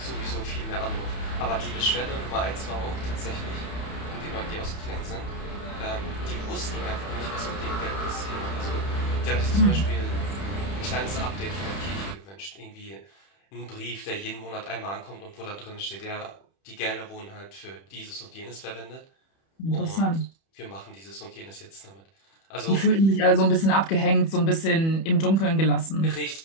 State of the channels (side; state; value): right; late; 31 ms